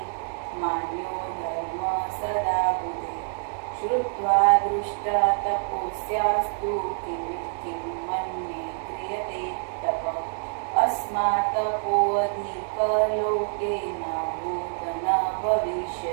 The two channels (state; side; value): silent; left; digital silence